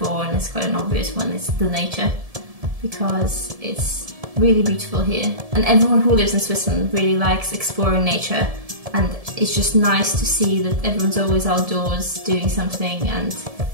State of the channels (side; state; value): left; late; 1.7 ms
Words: and it's quite an obvious one, is the nature, because it's really beautiful here. And everyone who lives in Switzerland really likes exploring nature, and it's just nice to see that everyone's always outdoors doing something, and